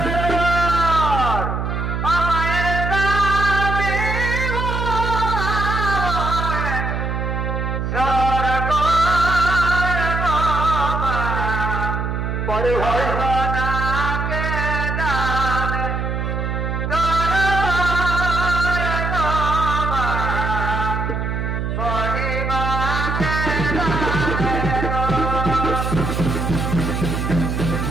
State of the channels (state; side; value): noise; right; hum, 2 dB below the sound